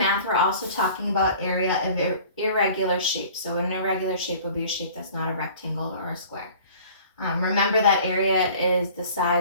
we're also talking about area of irregular shapes. So an irregular shape would be a shape that's not a rectangle or a square. Remember that area is the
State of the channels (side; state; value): both; inverted; correlation -0.47